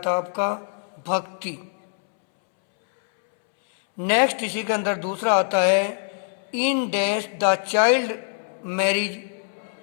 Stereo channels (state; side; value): silent; right; 63 dB below the other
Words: आपका भक्ति। नेक्स्ट इसी के अंदर दूसरा आता है, in dash the child marriage